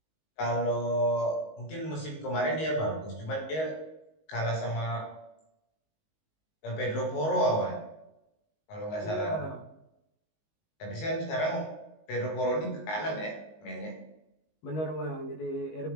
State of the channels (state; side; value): late; right; 19 ms